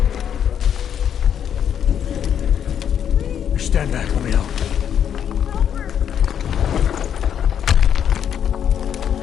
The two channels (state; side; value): quieter; right; 8.8 dB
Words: Stand back, let me help.